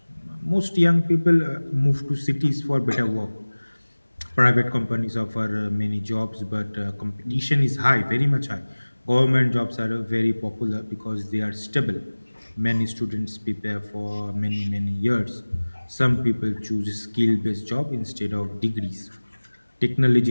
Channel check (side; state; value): both; inverted; correlation -1.00